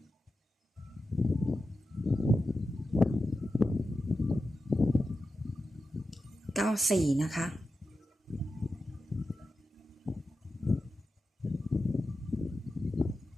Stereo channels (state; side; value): normal; both; correlation 0.90